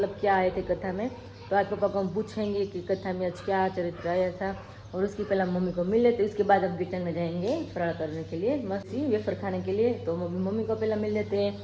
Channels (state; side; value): identical; both; correlation 1.00